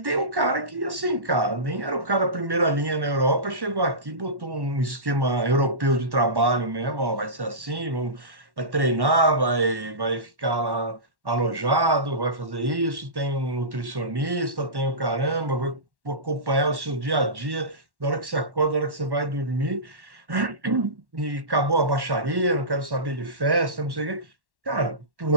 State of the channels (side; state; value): left; late; 1.1 ms